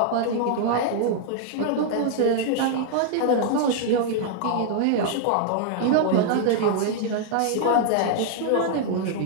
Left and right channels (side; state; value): both; different; correlation -0.01